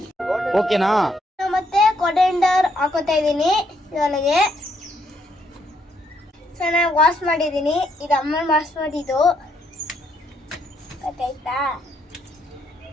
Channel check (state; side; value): normal; both; correlation 0.74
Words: ಓಕೆನಾ? ಮತ್ತೆ ಕೊಡೆಂಡರ್ ಹಾಕೋತಾ ಇದ್ದೀನಿ ಇದರೊಳಗೆ. ಚೆನ್ನಾಗಿ ವಾಶ್ ಮಾಡಿದ್ದೀನಿ. ಇದು ಅಮ್ಮ ವಾಶ್ ಮಾಡಿದ್ದು ಗೊತ್ತಾಯ್ತಾ?